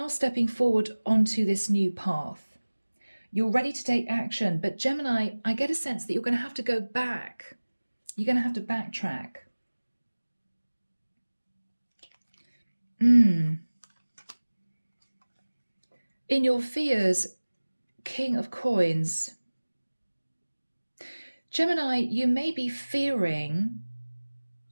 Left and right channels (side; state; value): both; inverted; correlation -1.00